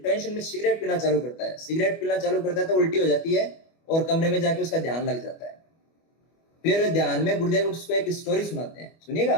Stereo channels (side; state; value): right; late; 25 ms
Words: टेंशन में सिगरेट पीना चालू करता है, सिगरेट पीना चालू करता है तो उल्टी हो जाती है और कमरे में जाके उसका ध्यान लग जाता है। फिर ध्यान में गुरुदेव उसको एक स्टोरी सुनाते हैं, सुनिएगा,